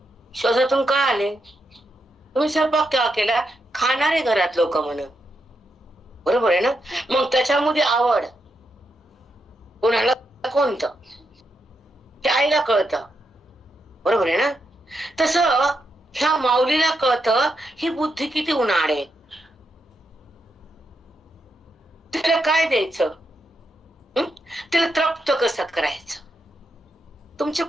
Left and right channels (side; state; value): both; normal; correlation 0.83